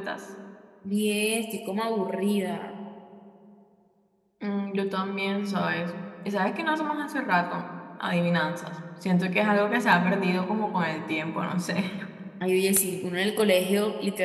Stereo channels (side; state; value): both; identical; correlation 1.00